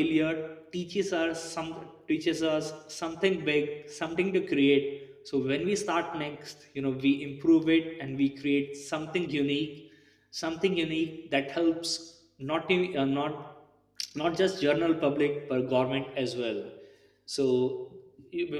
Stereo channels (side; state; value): both; identical; correlation 1.00